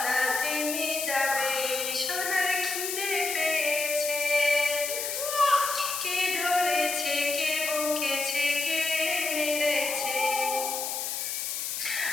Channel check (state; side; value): noise; left; hiss, 3 dB below the sound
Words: থেমে যাবে, সোনার খিদে পেয়েছে। কে ধরেছে, কে বকেছে, কে মেরেছে?